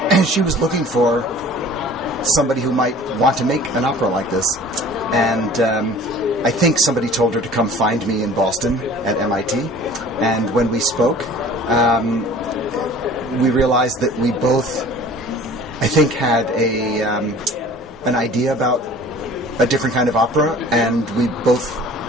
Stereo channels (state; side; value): normal; both; correlation 0.46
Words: she was looking for somebody who might want to make an opera like this. And I think somebody told her to come find me in Boston at MIT. And when we spoke, we realized that we both, I think, had an idea about a different kind of opera, and we both